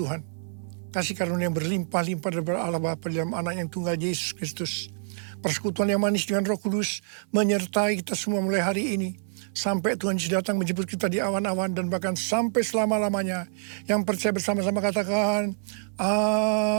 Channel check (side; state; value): left; silent; 60 dB below the other